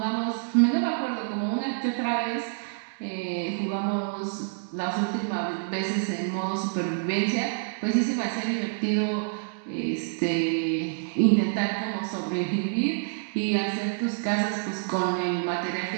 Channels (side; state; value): left; silent; digital silence